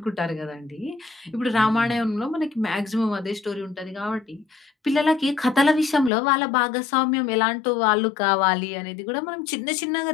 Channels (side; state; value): right; drops out; at 6.1 s